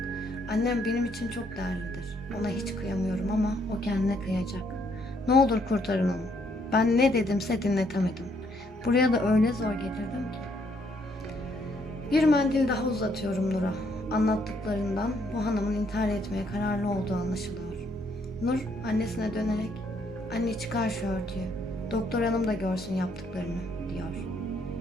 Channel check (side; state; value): both; normal; correlation 0.70